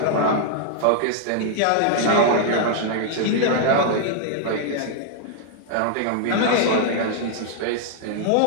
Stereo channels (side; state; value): both; different; correlation -0.01